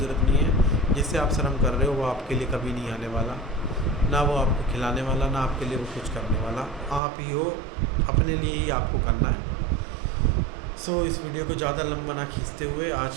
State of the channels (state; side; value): drops out; left; at 7.0 s